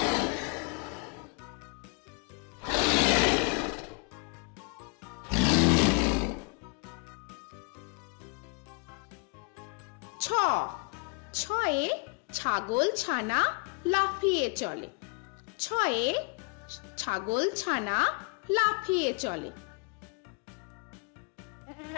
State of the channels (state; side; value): quieter; right; 34.7 dB